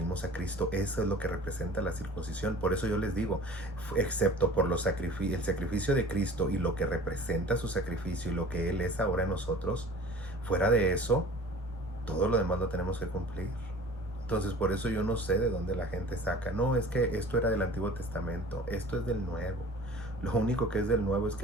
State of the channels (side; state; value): both; normal; correlation 0.43